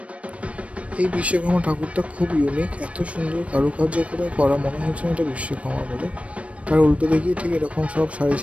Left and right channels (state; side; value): late; left; 0.063 ms